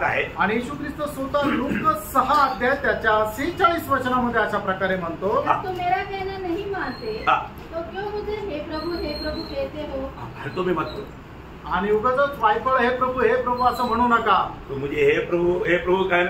है, आणि येशू ख्रिस्त स्वतः लूक 6 अध्याय त्याच्या 46 वचनामध्ये अशा प्रकारे म्हणतो, जब तुम मेरा कहना नहीं मानते हाँ। तो क्यों मुझे हे प्रभु कहते हो? हरदों में मत करो, आणि उगाचच वायफळ हे प्रभु असं म्हणू नका। तो मुझे हे प्रभु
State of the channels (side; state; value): both; identical; correlation 1.00